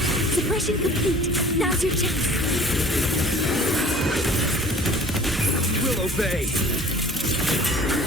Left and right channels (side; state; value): both; normal; correlation 0.48